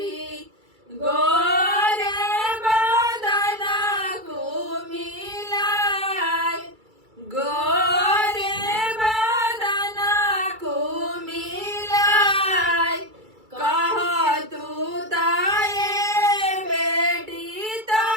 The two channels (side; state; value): left; late; 2.3 ms